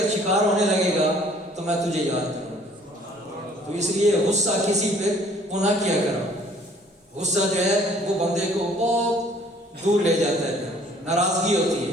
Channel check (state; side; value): normal; both; correlation 0.57